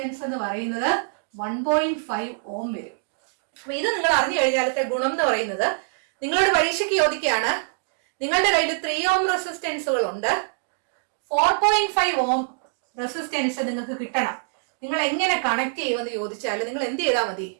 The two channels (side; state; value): left; silent; digital silence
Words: എന്ന് പറയുന്നത് 1.5 ohm വരും. അപ്പൊ ഇത് നിങ്ങൾ അറിഞ്ഞു കഴിഞ്ഞാലത്തെ ഗുണം എന്ന് പറയുന്നത് നിങ്ങളോട് പരീക്ഷയ്ക്ക് ചോദിക്കുകയാണ്, നിങ്ങളുടെ കയ്യിൽ 3 ഓം റെസിസ്റ്റൻസുകൾ ഉണ്ട്, 4.5 ഓം റെസിസ്റ്റൻസ് നിങ്ങൾക്ക് കിട്ടണം. നിങ്ങൾ എങ്ങനെ കണക്ട് ചെയ്യുമെന്ന് ചോദിച്ചാൽ നിങ്ങൾ എന്ത് ചെയ്താൽ മതി?